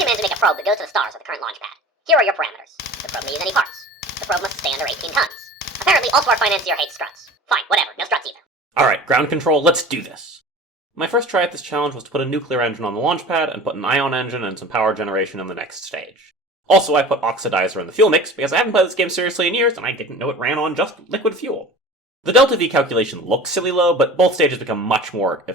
to make a probe that goes to the stars with the current launchpad. Here are your parameters. The probe may use any parts. The probe must stay under 18 tons. Apparently, also our financier hates struts. Fine, whatever, no struts either. Alright, ground control, let's do this. My first try at this challenge was to put a nuclear engine on the launchpad and put an ion engine and some power generation in the next stage. Also, I put oxidizer in the fuel mix because I haven't played this game seriously in years and I didn't know it ran on just liquid fuel. The delta V calculation looks silly low, but both stages become much more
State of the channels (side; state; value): both; normal; correlation 0.39